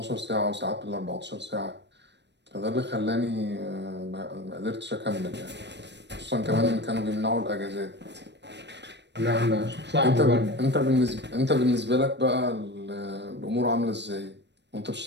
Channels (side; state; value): left; late; 0.51 ms